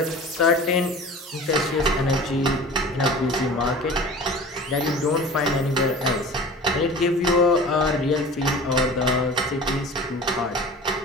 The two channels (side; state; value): both; normal; correlation 0.39